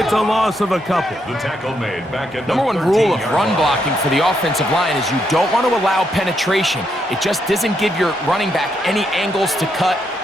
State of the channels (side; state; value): both; normal; correlation 0.78